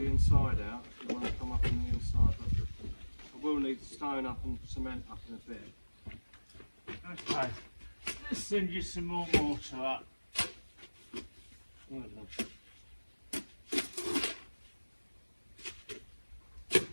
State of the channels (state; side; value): inverted; both; correlation -1.00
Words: inside out if you want to come up on the inside. But I will need stone up and cement up in a bit. Okay. Let's send you some more mortar up.